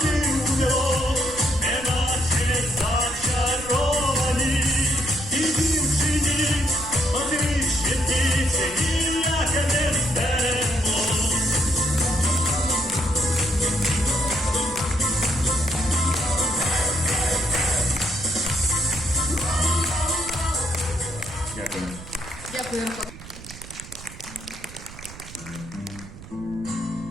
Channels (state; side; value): noise; right; rumble, 16 dB below the sound